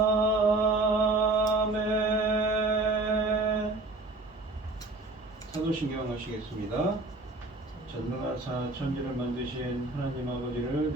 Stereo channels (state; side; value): quieter; left; 3.0 dB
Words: 사도신경 하시겠습니다. 전능하사 천지를 만드신 하나님 아버지를